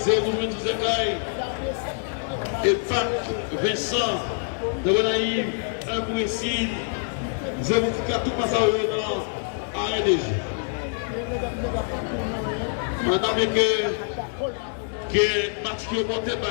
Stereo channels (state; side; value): silent; right; 61 dB below the other